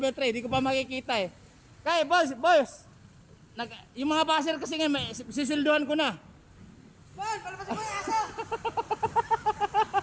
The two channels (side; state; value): both; identical; correlation 1.00